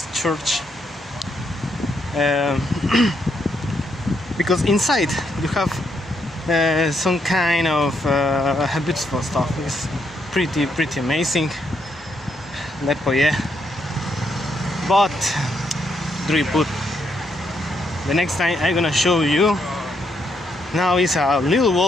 Church. Because inside you have some kind of beautiful stuff. It's pretty amazing. Lepo je. But drugi put. The next time I'm gonna show you. Now it's a little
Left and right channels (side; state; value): both; normal; correlation 0.77